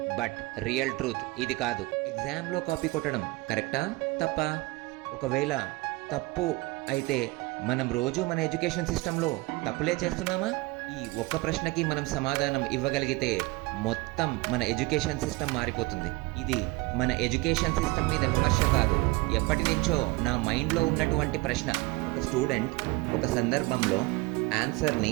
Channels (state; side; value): quieter; left; 23.0 dB